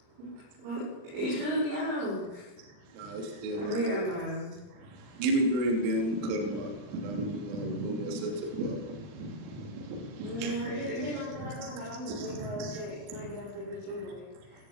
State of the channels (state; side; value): late; left; 40 ms